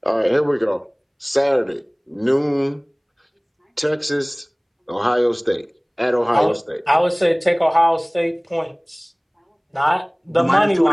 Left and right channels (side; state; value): both; identical; correlation 1.00